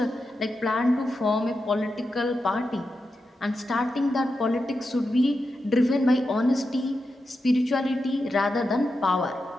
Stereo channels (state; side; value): normal; both; correlation 0.89